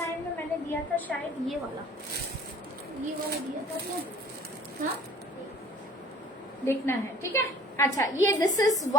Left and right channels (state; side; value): normal; both; correlation 0.48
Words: में मैंने दिया था शायद ये वाला दिया था क्या? हाँ देखना है, ठीक है? अच्छा ये this is